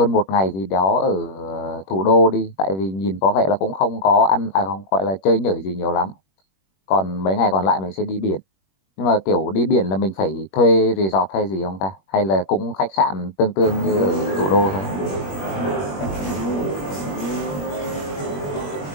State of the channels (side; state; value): right; late; 21 ms